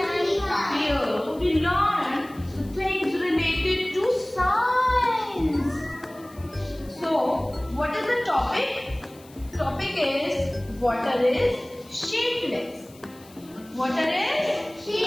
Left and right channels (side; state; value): left; noise; hiss, 24 dB below the sound